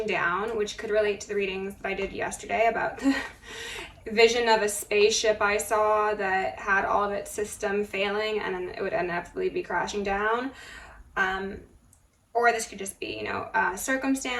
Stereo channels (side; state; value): both; identical; correlation 1.00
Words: down, which could relate to the readings that I did yesterday about the vision of a spaceship I saw that had all of its system failing and then it would inevitably be crashing down. Or this could just be, you know, a